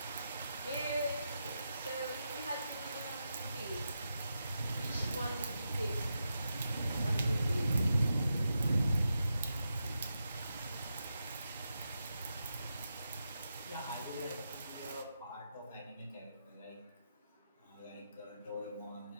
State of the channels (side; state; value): both; inverted; correlation -0.87